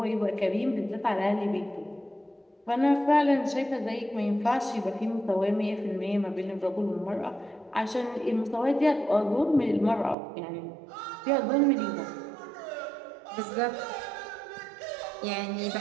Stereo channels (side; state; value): left; drops out; at 10.2 s